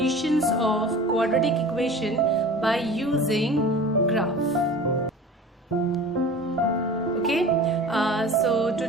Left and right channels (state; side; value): normal; both; correlation 0.39